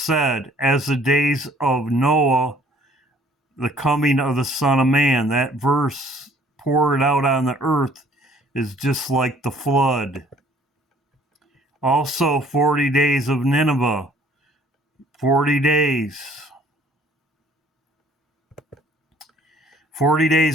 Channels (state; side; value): normal; both; correlation 0.57